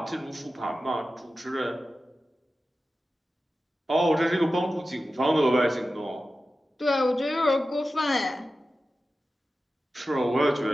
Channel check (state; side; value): normal; both; correlation 0.94